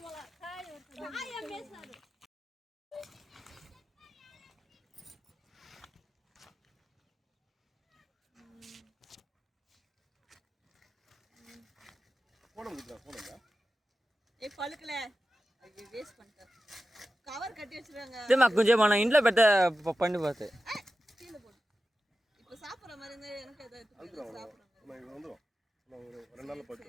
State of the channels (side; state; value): both; normal; correlation 0.93